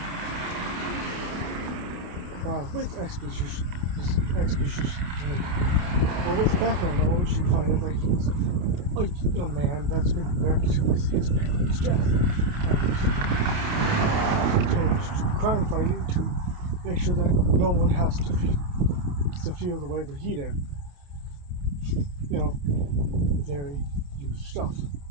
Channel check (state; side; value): late; left; 29 ms